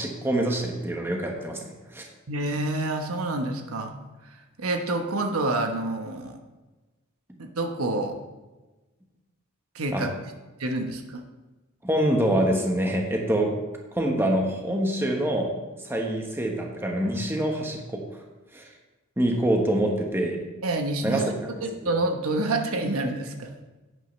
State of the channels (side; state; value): both; normal; correlation 0.50